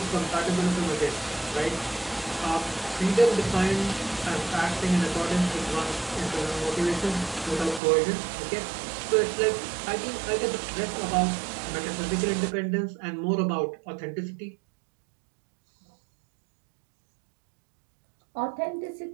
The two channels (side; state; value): left; drops out; at 7.8 s